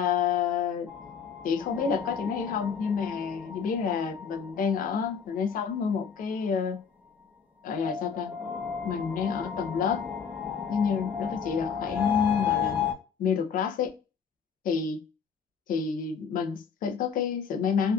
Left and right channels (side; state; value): right; quieter; 6.4 dB